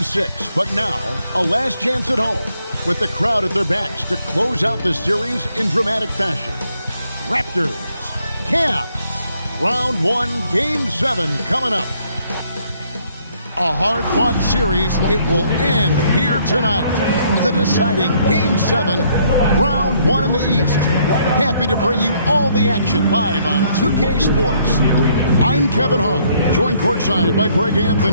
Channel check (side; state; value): both; inverted; correlation -0.68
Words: 6, but now a last chance at home with the crowd at their backs to close out the series in dramatic fashion. Raptors, Cavs, Round 1, Game 7 coming up. A hard-fought series. It will end here tonight. The deciding Game 7, Round 1 in the East. Happy to bring you all the action live on 2K Sports. I'm Kevin Harlan, joined courtside by Greg